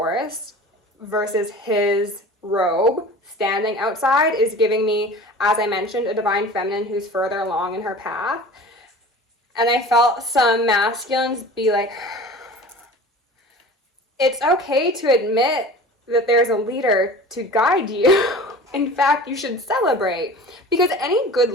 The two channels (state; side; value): normal; both; correlation 0.39